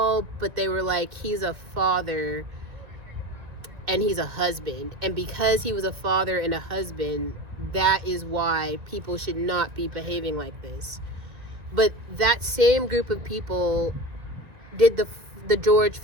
but they were like, he's a father and he's a husband, and because he was a father and a husband, that is why people should not be behaving like this. But that same group of people did the George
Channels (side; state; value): left; late; 1.7 ms